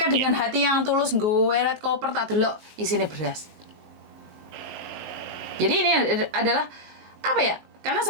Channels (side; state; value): left; late; 19 ms